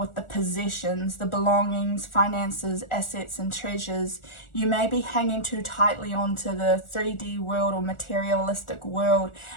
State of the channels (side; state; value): right; late; 1.4 ms